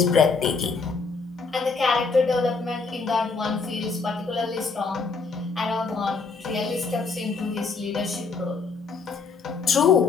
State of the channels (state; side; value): quieter; right; 4.6 dB